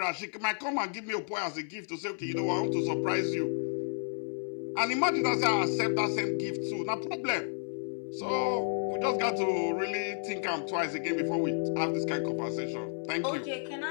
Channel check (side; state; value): right; silent; 57 dB below the other